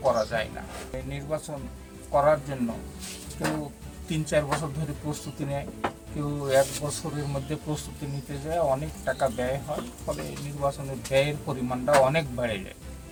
করা যায় না। এই নির্বাচন করার জন্য কেউ 3-4 বছর ধরে প্রস্তুতি নেয়, কেউ 1 বছরের মধ্যে প্রস্তুতি নিতে যায়, অনেক টাকা ব্যয় হয়, ফলে নির্বাচনের ব্যয়ের পরিমাণটা অনেক বেড়ে যায়।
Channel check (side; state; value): both; identical; correlation 1.00